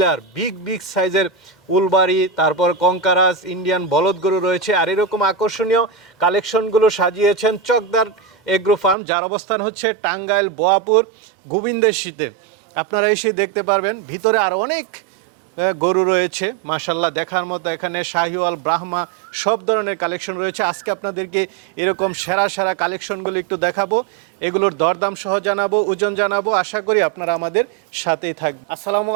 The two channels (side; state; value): left; drops out; at 9.0 s